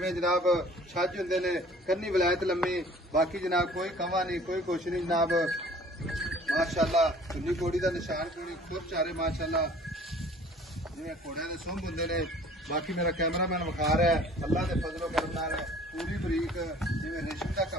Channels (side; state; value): both; normal; correlation 0.51